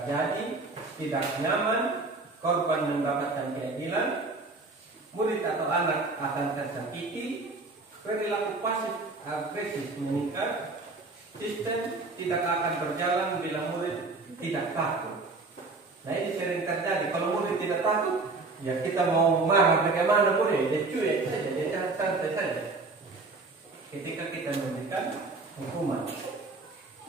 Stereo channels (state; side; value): quieter; left; 3.6 dB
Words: tidak nyaman, korban mendapatkan keadilan, murid atau anak akan tersakiti, perilaku pasif agresif meningkat, sistem tidak akan berjalan bila murid tidak takut. Nah ini sering terjadi. Kalau murid tidak takut, ya kita mau marah bagaimana boleh, dia cuek saja, dia santai saja. Ketika kita memberikan hukuman,